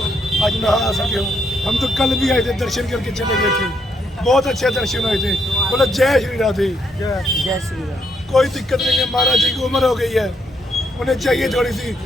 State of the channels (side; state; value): both; normal; correlation 0.75